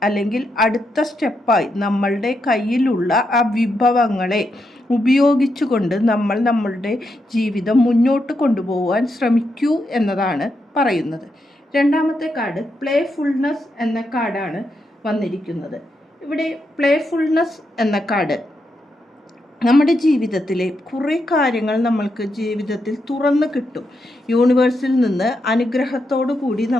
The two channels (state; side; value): normal; both; correlation 0.83